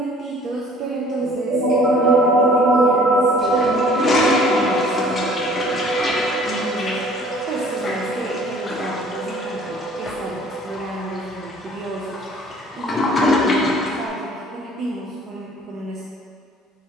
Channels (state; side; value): normal; both; correlation 0.52